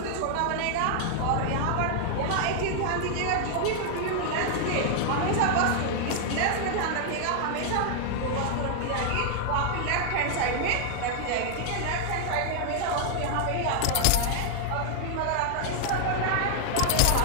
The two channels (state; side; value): different; both; correlation 0.00